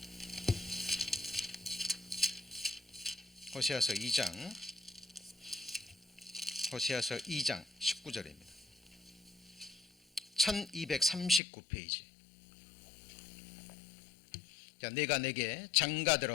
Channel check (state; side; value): drops out; right; at 11.4 s